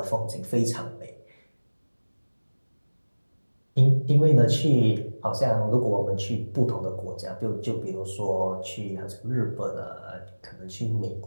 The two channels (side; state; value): both; inverted; correlation -1.00